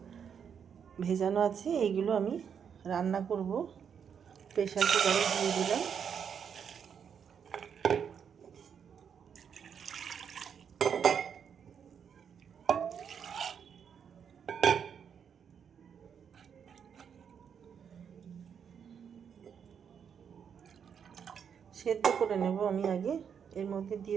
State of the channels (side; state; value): left; quieter; 7.5 dB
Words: ভেজানো আছে, এইগুলো আমি রান্না করব। প্রেসার কুকারে দিয়ে দিলাম। সেদ্ধ করে নেব আমি আগে। এর মধ্যে দিয়ে